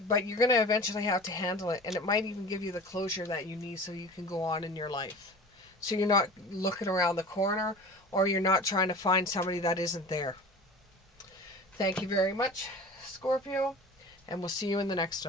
but you're going to eventually have to handle it, and it might even give you the closure that you need so you can go on in your life. So you're not looking around the corner, or you're not trying to find somebody that isn't there. Thank you very much, Scorpio, and we'll see you in the next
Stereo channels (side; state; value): both; normal; correlation 0.38